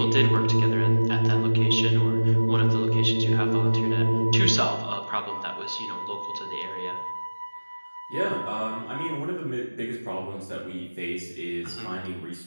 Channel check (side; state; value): both; inverted; correlation -1.00